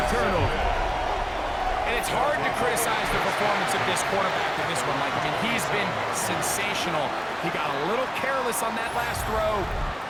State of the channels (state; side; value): identical; both; correlation 1.00